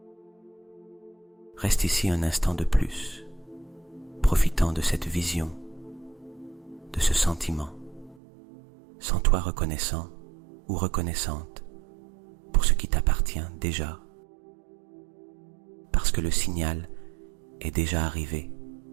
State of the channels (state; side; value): drops out; left; at 8.2 s